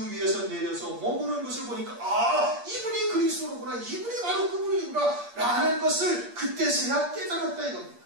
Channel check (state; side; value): late; left; 8.5 ms